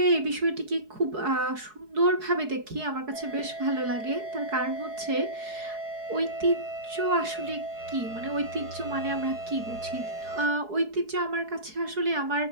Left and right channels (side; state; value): left; late; 4.7 ms